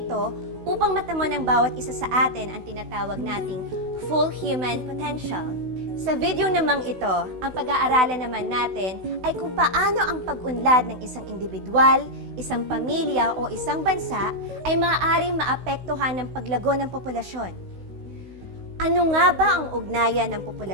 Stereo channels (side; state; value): left; late; 16 ms